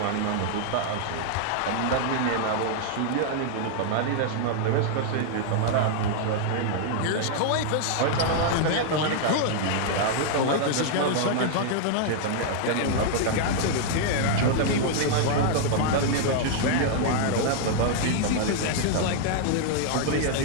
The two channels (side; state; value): both; different; correlation -0.01